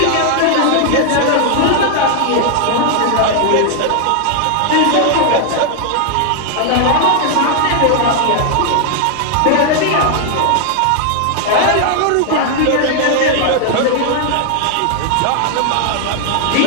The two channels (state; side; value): different; both; correlation 0.00